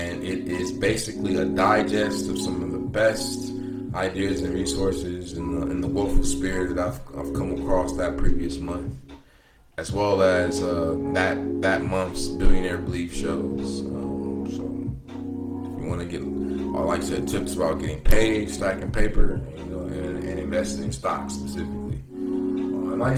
it is basically a digest of some of the best ideas and resources in the willful spirit that I've come across that previous month, as well as that month's Billionaire Belief shows. So if you want to get, like I said, tips about getting paid, stacking paper, and investing in stocks specifically. And like I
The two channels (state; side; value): identical; both; correlation 1.00